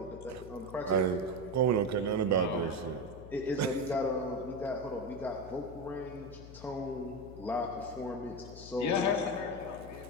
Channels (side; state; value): left; noise; hum, 14 dB below the sound